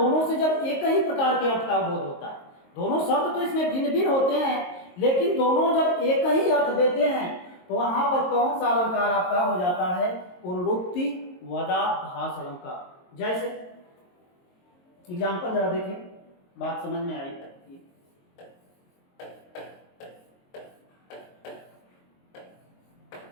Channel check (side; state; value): right; late; 22 ms